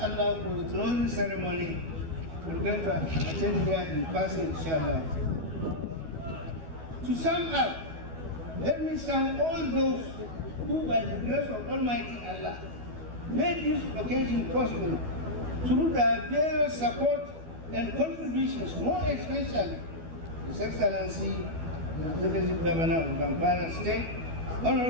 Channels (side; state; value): left; late; 12 ms